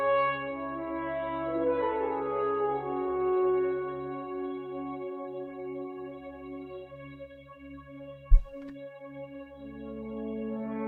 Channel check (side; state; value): both; identical; correlation 1.00